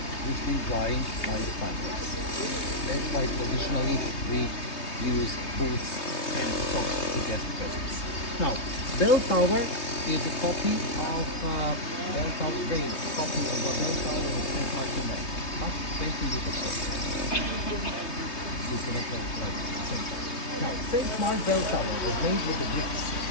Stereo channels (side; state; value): right; late; 3.2 ms